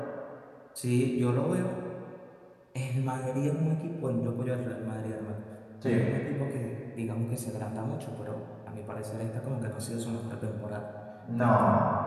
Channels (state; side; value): identical; both; correlation 1.00